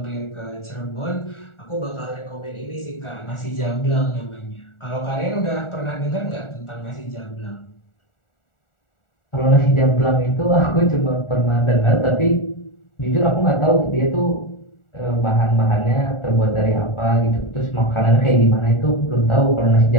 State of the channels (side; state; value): right; late; 1.4 ms